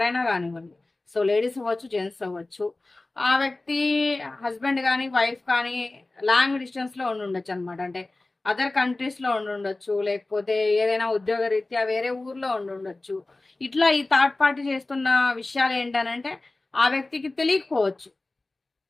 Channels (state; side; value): quieter; right; 3.0 dB